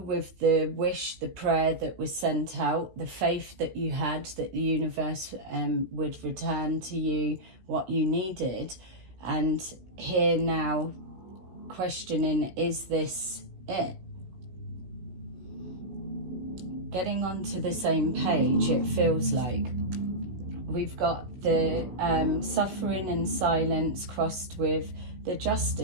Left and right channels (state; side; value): late; left; 16 ms